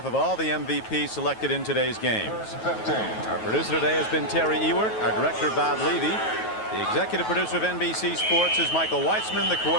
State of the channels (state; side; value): late; right; 9.3 ms